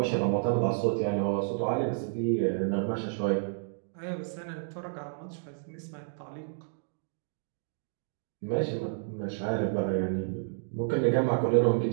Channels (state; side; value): silent; left; digital silence